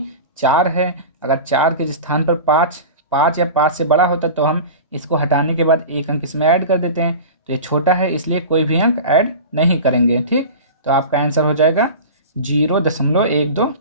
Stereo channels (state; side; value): inverted; both; correlation -0.32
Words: 4 है। अगर 4 के स्थान पर 5 या 5 से बड़ा होता तो हम इसको हटाने के बाद एक अंक इसमें ऐड कर देते हैं। तो ये छोटा है इसलिए कोई भी अंक ऐड नहीं करेंगे, ठीक। तो आपका आंसर हो जाएगा